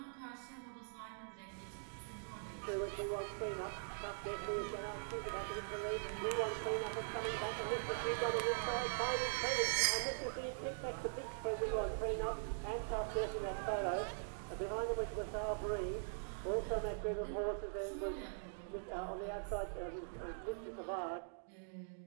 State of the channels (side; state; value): left; silent; digital silence